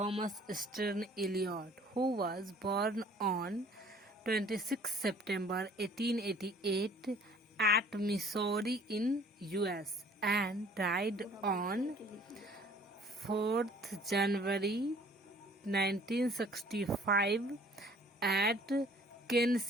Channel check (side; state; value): both; normal; correlation 0.54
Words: Stern Eliot, who was born on 26 September 1888 at Missouri in US and died on 4th January 1965 at